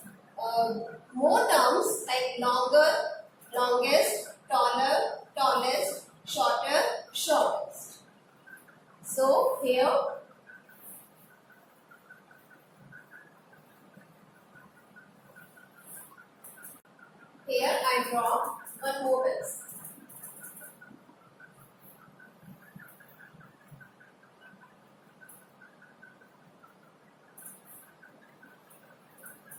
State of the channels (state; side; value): identical; both; correlation 1.00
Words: more terms like longer, longest, taller, tallest, shorter, shortest. So here I draw one more pencil.